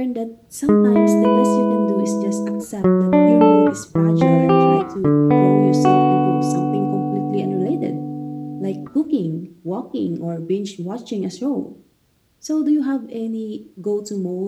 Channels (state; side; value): identical; both; correlation 1.00